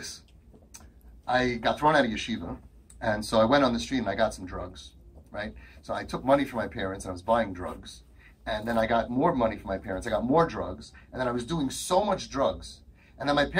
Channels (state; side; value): identical; both; correlation 1.00